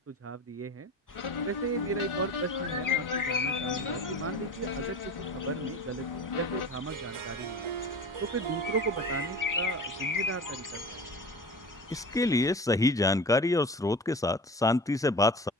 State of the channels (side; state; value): both; normal; correlation 0.35